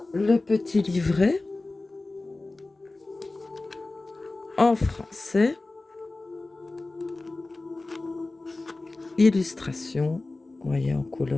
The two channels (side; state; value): right; quieter; 3.2 dB